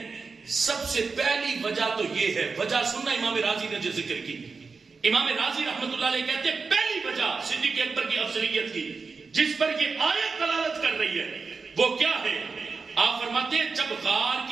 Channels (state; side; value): quieter; left; 4.6 dB